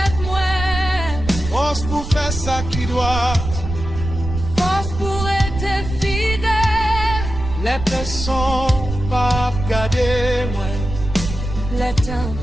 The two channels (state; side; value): noise; right; rumble, 7 dB below the sound